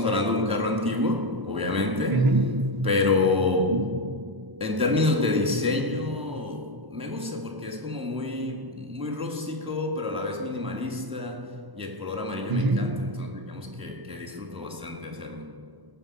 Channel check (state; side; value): late; left; 1.0 ms